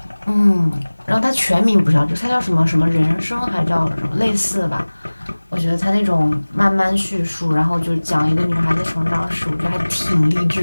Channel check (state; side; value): inverted; both; correlation -1.00